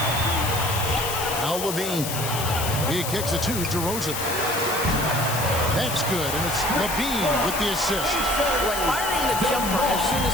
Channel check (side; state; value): left; noise; hiss, 5 dB below the sound